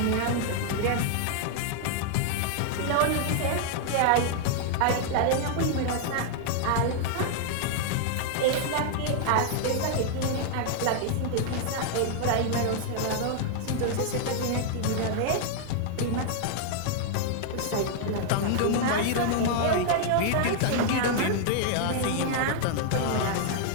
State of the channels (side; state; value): both; different; correlation 0.00